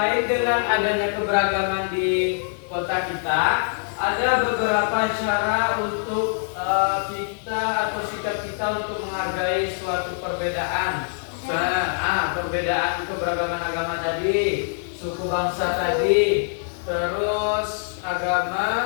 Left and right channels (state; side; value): silent; right; 63 dB below the other